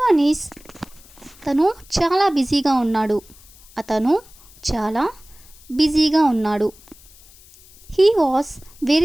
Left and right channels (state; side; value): noise; left; hiss, 24 dB below the sound